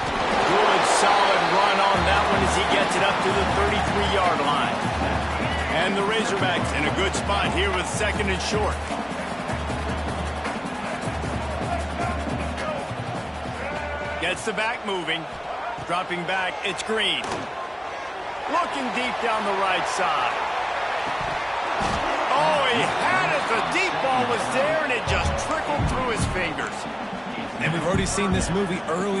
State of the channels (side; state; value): both; identical; correlation 1.00